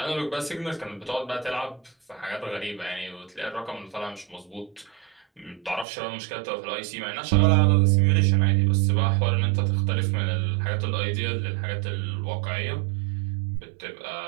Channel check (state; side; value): drops out; left; at 5.9 s